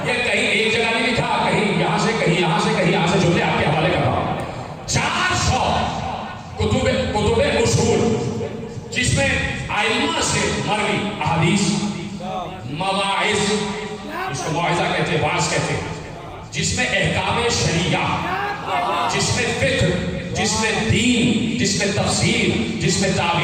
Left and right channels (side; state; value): both; identical; correlation 1.00